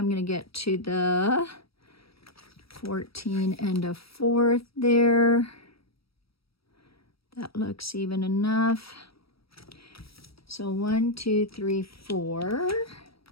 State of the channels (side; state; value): right; late; 0.76 ms